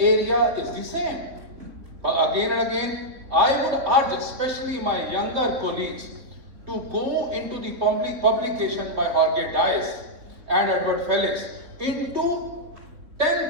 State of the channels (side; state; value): left; late; 3.6 ms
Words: is the same. But again and again, I would urge, especially my younger colleagues, to go into the publication by Jorge Dias and Edward Felix into